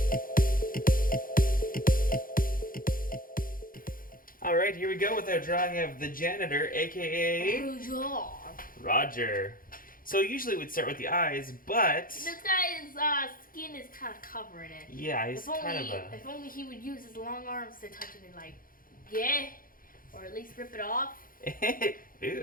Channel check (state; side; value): late; right; 0.41 ms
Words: Alright, here we go with our drawing of the Janitor, a.k.a. Roger. So usually we'd start with the eyes, but... This guy's skin is kind of covering it. Yeah, he's If only he would use his long arms to touch it and or at least rip it off.